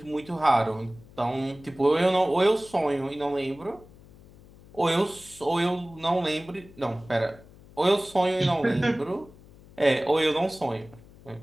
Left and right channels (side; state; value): left; noise; hum, 23 dB below the sound